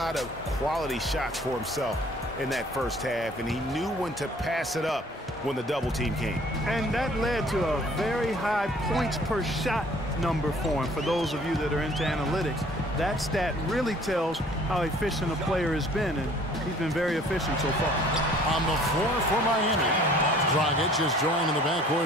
of quality shots for himself in that first half, and he knew when to pass it up when the double team came. And that led to a very high points per shot number for him. For those of you that are into analytics, that stat really tells how efficient a player has been, and he's been very efficient so far. On the floor for Miami, Dragic is joined in the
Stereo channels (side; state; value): both; normal; correlation 0.54